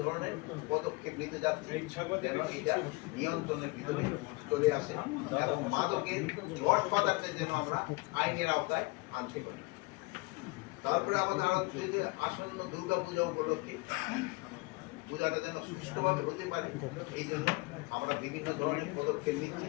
ধরনের পদক্ষেপ নিতে যাচ্ছি যেন এটা নিয়ন্ত্রণের ভিতরে চলে আসে এবং মাদকের গডফাদারকে যেন আমরা আইনের আওতায় আনতে পারি। তারপরে আমাদের আরো আসন্ন দুর্গা পূজা উপলক্ষে পূজাটা যেন সুষ্ঠুভাবে হতে পারে, এই জন্য আমরা বিভিন্ন ধরনের পদক্ষেপ নিচ্ছি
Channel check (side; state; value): right; quieter; 25.3 dB